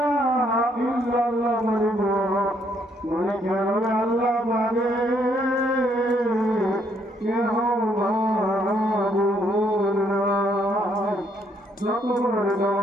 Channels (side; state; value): both; normal; correlation 0.70